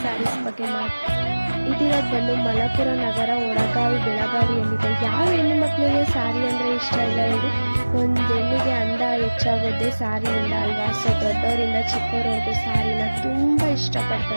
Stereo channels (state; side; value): inverted; both; correlation -1.00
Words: ಸ್ಯಾರೀಸ್ ಬಗ್ಗೆ ಇದಿರೋದು ಬಂದು ಮಲಪುರ ನಗರ, ಒಳಗಾವಿ, ಬೆಳಗಾವಿಯಲ್ಲಿದೆ. ಯಾವ ಹೆಣ್ಣು ಮಕ್ಕಳಿಗೆ ಸ್ಯಾರಿ ಅಂದರೆ ಇಷ್ಟ ಇಲ್ಲ ಹೇಳಿ? ಒಂದು ಹೆಣ್ಣಿಗೆ ಅಂದ ಹೆಚ್ಚಾಗೋದೇ ಸ್ಯಾರಿಯಿಂದ ಅಲ್ವಾ? ಸೊ ದೊಡ್ಡವರಿಂದ ಚಿಕ್ಕವರವರೆಗೂ ಸ್ಯಾರಿನ ತುಂಬ